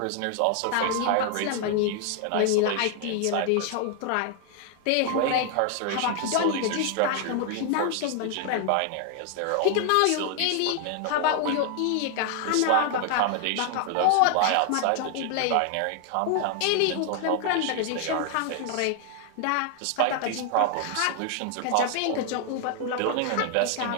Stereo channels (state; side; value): different; both; correlation 0.00